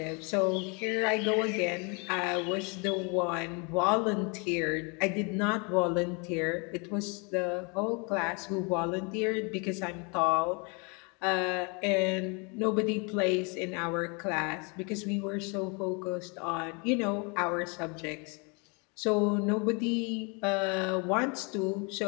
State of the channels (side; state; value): right; quieter; 32.5 dB